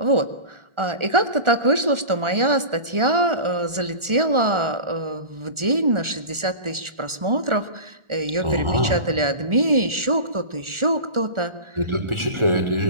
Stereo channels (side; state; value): left; late; 1.4 ms